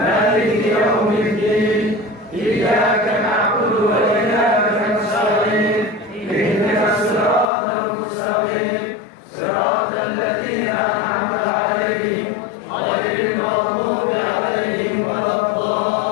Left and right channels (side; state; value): right; drops out; at 7.5 s